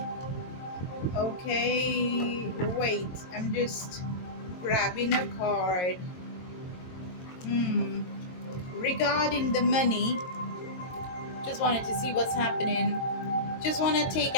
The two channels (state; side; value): late; right; 22 ms